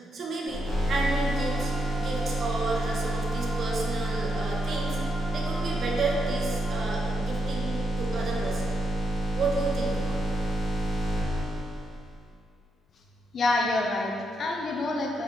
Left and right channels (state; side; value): normal; both; correlation 0.81